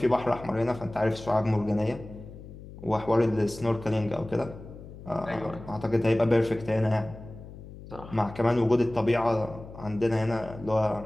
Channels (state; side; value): noise; left; hum, 15 dB below the sound